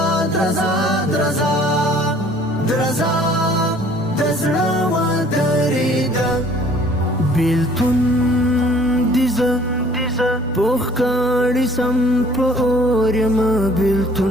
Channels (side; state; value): both; normal; correlation 0.55